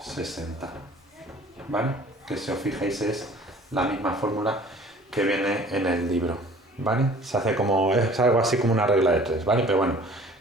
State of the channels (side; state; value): both; normal; correlation 0.49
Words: ¿vale? Que si os fijáis es la misma fórmula que viene en el libro, ¿vale? Se hace como, es algo así como una regla de 3, ¿vale? Pero bueno,